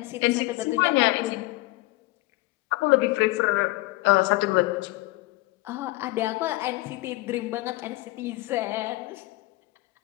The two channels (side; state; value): right; quieter; 20.2 dB